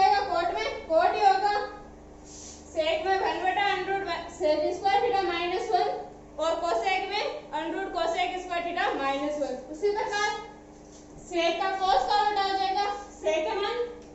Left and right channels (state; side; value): identical; both; correlation 1.00